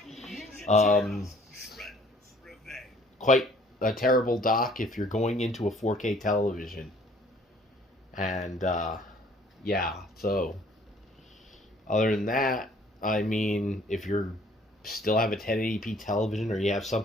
Quite a terrible dock if you're going into a 4K television. And, so other than that, if you're still have a 1080p television, or you have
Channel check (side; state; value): both; normal; correlation 0.57